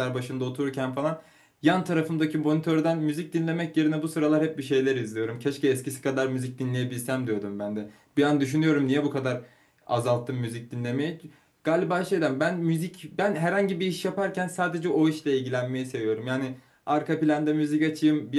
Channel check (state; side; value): identical; both; correlation 1.00